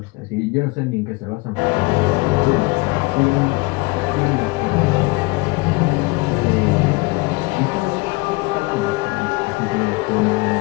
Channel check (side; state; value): right; quieter; 24.7 dB